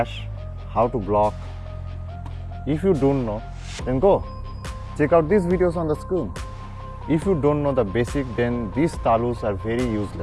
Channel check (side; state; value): both; identical; correlation 1.00